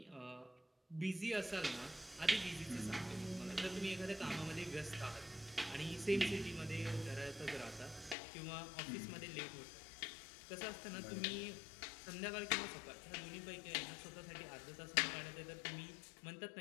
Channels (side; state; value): right; drops out; at 8.2 s